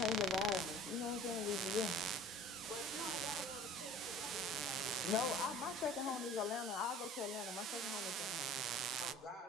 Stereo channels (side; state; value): both; normal; correlation 0.45